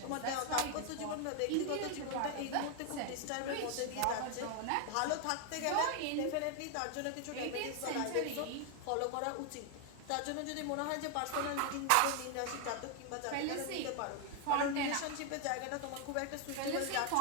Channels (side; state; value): both; different; correlation 0.01